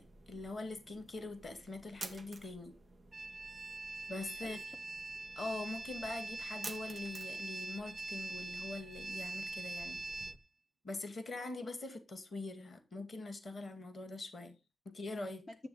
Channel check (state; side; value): normal; both; correlation 0.89